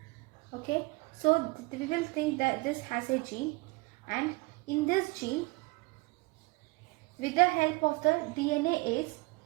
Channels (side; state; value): left; quieter; 25.3 dB